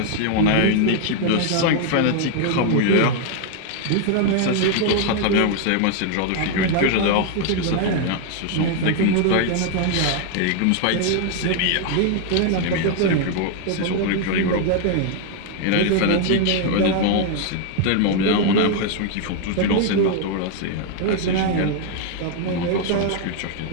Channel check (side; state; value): both; different; correlation 0.00